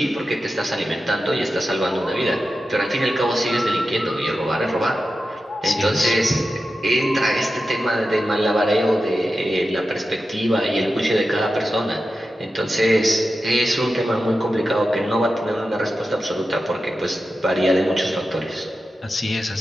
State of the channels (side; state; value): both; normal; correlation 0.92